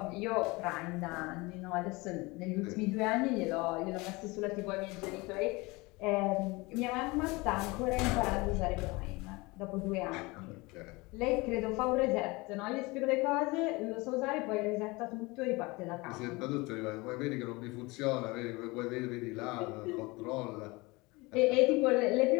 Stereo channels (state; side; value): quieter; right; 24.1 dB